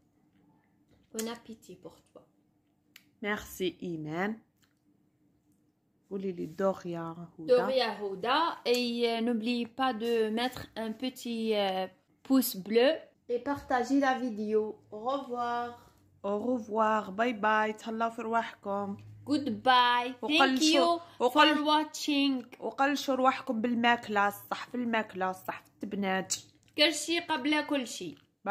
Bon appétit pour toi. Merci Iman. Voulez-les Doria Houda. Doria Houda. Et n'oubliez pas de mettre un petit pouce bleu et partager la vidéo. Au revoir. Au revoir. Bye bye. تهلاو في رواحكم. Goodbye. Thank you for watching. وقلشوا رواحكم بالماكلة الصح، في الماكلة الصح، في التبنات. كل شيء قبل كل شيء.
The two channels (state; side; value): identical; both; correlation 1.00